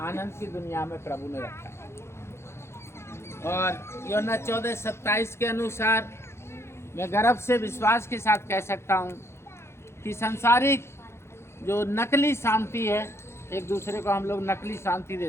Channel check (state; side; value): late; right; 0.13 ms